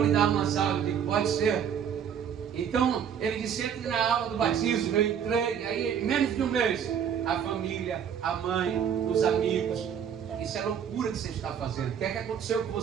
lhe dar umas aulas. Eu digo, pode ser. Então ele disse, entre na aula do batismo. Eu entrei, aí em menos de um mês, a família, a mãe, os amigos. Isso é loucura que você está fazendo. O que é que aconteceu com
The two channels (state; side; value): quieter; left; 8.2 dB